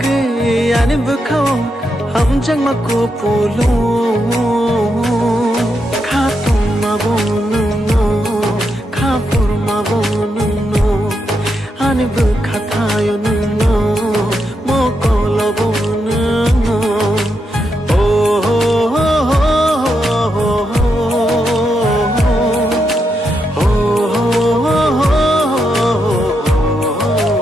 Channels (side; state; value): both; normal; correlation 0.83